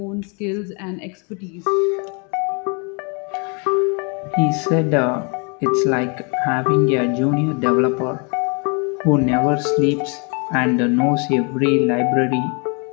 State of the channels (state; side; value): quieter; right; 35.0 dB